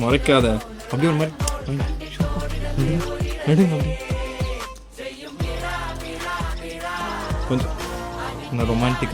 முறைக்காத அப்படியே ஒரு மாதிரி கொஞ்சம் நான்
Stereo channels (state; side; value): identical; both; correlation 1.00